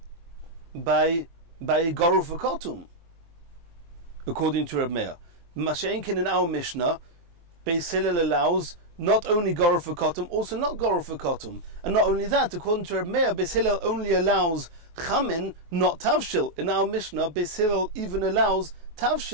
by goruf v'kotum. According to Reb Meir, Masha'inkin in our Mishnah, Beis Hillel allows not only goruf v'kotum, also not goruf v'kotum. And not only that, according to Reb Meir, Beis Hillel only allows chamin, not tavshil. In our Mishnah, Beis Hillel even allows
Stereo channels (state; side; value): late; left; 23 ms